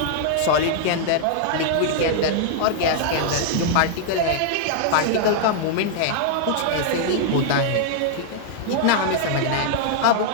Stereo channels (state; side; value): different; both; correlation -0.01